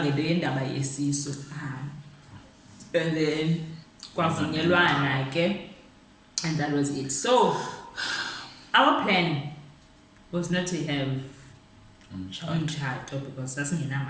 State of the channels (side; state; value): both; identical; correlation 1.00